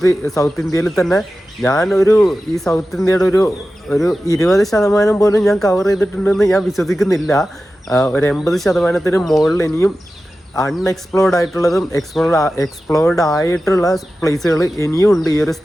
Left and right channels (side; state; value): both; normal; correlation 0.94